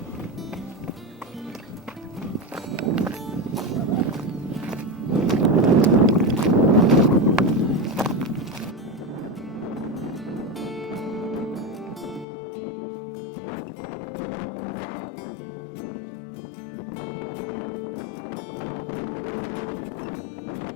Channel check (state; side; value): drops out; right; at 12.2 s